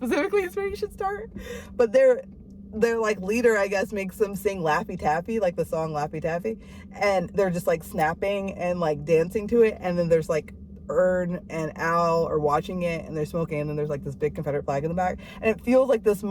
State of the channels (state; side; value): identical; both; correlation 1.00